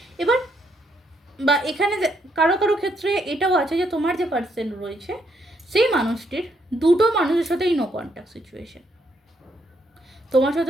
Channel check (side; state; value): both; normal; correlation 0.74